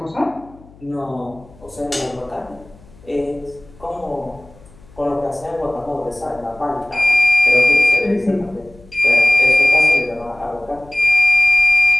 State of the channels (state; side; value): noise; left; hum, 25 dB below the sound